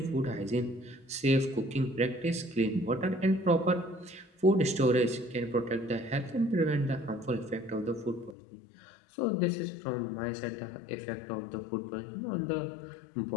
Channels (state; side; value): drops out; right; at 8.3 s